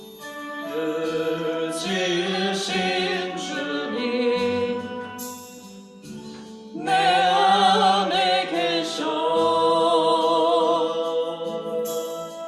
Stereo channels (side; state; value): both; identical; correlation 1.00